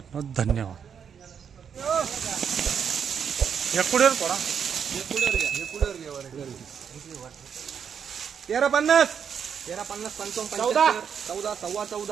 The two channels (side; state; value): left; quieter; 7.4 dB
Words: धन्यवाद। एकुडेर पडा 1350 1350 55 14 14 सव्वा